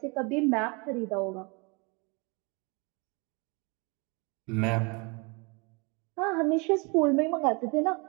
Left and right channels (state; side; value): quieter; left; 30.5 dB